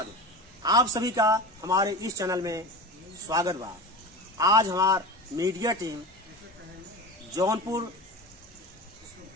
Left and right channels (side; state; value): both; normal; correlation 0.30